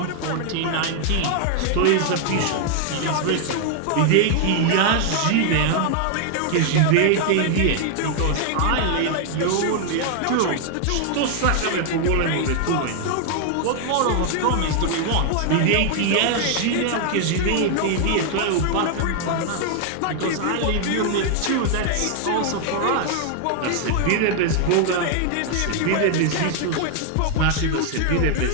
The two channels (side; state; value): both; different; correlation 0.00